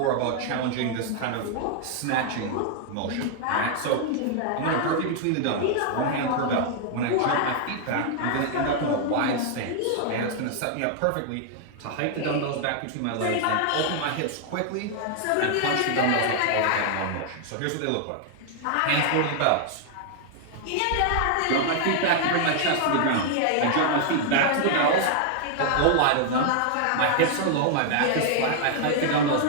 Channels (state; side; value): different; both; correlation 0.00